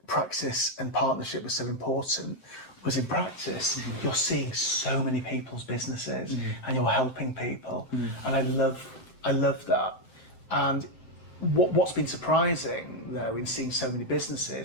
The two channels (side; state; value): right; late; 7.7 ms